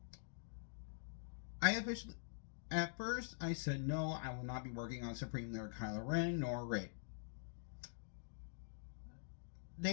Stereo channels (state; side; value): silent; right; digital silence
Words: At first I said no, I will not be working on Supreme Leader Kylo Ren nor Rey.